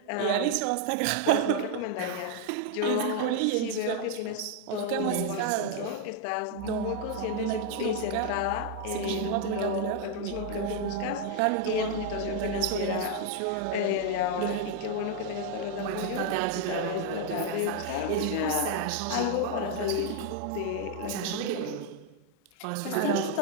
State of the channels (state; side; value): different; both; correlation 0.00